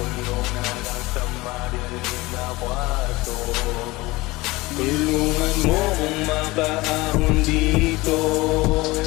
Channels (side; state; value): right; quieter; 21.2 dB